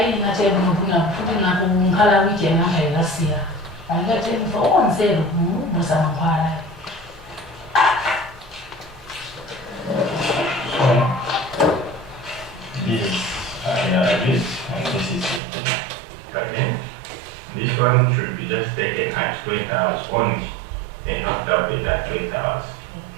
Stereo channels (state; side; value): drops out; left; at 15.4 s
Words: na tebe mubuna futhi na kunghala wiki ngaka ilasia. Angathi mfo onzelo musa mkhwala. This this is okay. This one should be just taken at 20 hours only and not double at 20 hours.